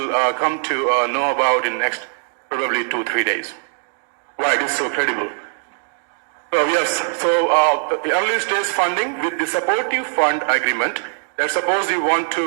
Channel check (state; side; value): silent; left; digital silence